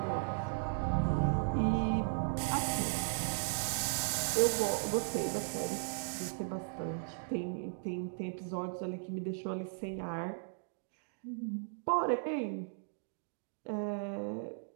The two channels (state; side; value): silent; left; digital silence